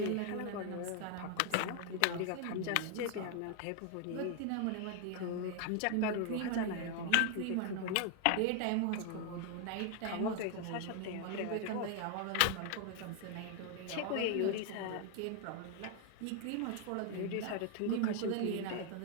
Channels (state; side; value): different; both; correlation 0.00